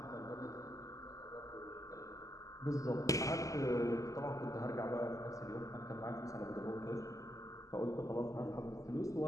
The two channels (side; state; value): right; late; 0.16 ms